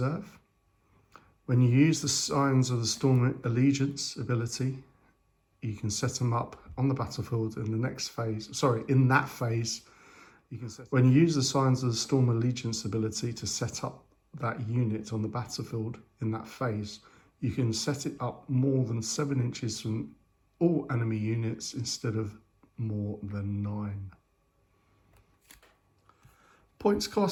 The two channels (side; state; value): both; identical; correlation 1.00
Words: When you use the Signs of the Storm Allegiance ability, you can set them up on the battlefield in the next phase. In that phase, you can set. When you use the Signs of the Storm Allegiance ability to set up that unit on the battlefield in that phase, you can set it up more than 7 inches from all enemy units instead of more than 9. Points